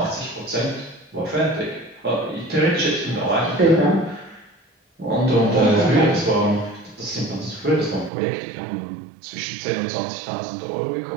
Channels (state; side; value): drops out; left; at 8.1 s